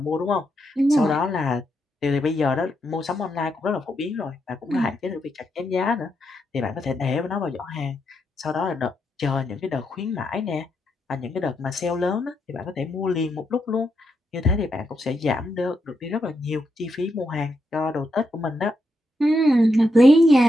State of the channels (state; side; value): normal; both; correlation 0.82